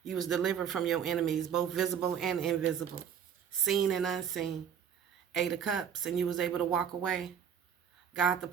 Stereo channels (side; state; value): left; quieter; 8.2 dB